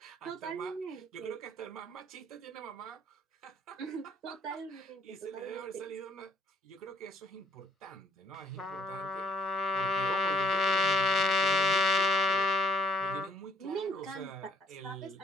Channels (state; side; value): normal; both; correlation 0.63